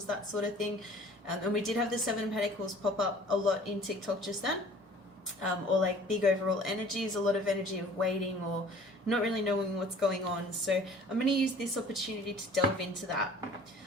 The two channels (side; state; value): both; normal; correlation 0.50